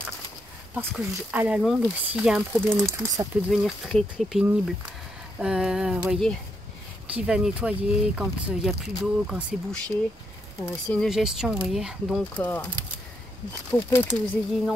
Parce que à la longue, s'il y a un problème et tout, ça peut devenir très très pénible. Vous voyez, qui va nettoyer quand il n'y a plus d'eau, quand c'est bouché. C'est une gestion, vous voyez. Donc, pour peu que vous ayez une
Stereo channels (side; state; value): both; normal; correlation 0.79